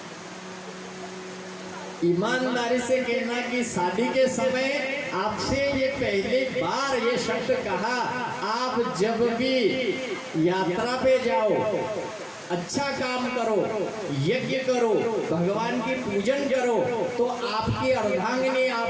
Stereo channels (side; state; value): both; identical; correlation 1.00